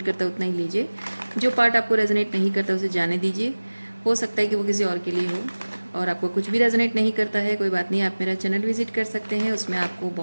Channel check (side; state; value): both; inverted; correlation -1.00